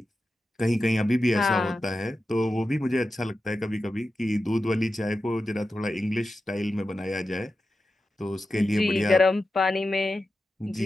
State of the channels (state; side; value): normal; both; correlation 0.91